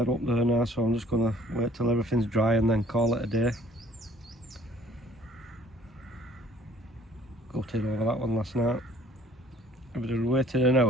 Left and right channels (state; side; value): normal; both; correlation 0.55